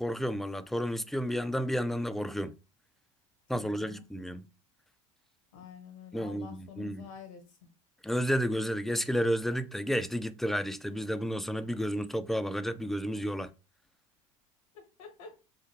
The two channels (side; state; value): both; normal; correlation 0.91